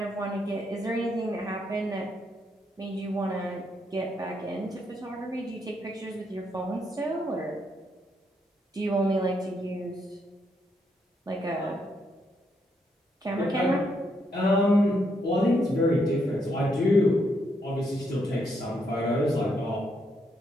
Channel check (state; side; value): normal; both; correlation 0.77